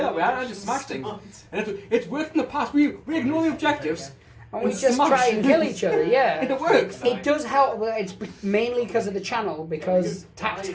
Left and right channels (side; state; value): both; identical; correlation 1.00